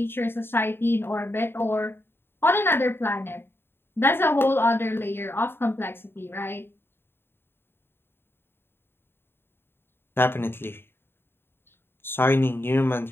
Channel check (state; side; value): late; right; 0.11 ms